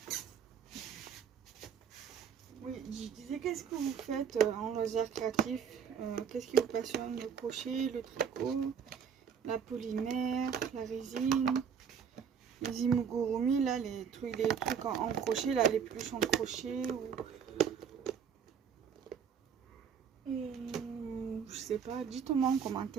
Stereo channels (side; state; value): left; quieter; 7.2 dB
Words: Oui, je disais, qu'est-ce que vous faites en loisir créatif? Qu'est-ce qui vous passionne? Le crochet, le tricot, la polymère, la résine, les amigurumi, là, les trucs en crochet, là, les peluches en crochet, ou je sais pas, dites-moi en